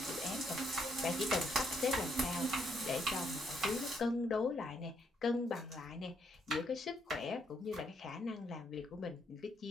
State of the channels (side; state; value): both; normal; correlation 0.73